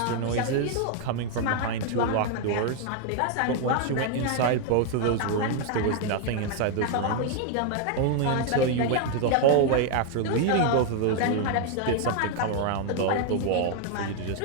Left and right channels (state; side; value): different; both; correlation 0.00